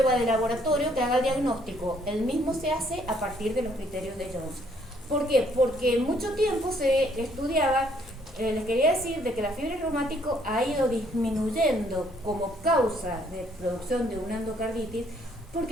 de laboratorio que haga el diagnóstico, el mismo se hace a partir de los criterios de Jones. ¿Por qué? Porque mucho tiempo se estudiaba, les quería decir, de que la fiebre reumática ha ido disminuyendo como causa de producción de una endocarditis,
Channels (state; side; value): normal; both; correlation 0.66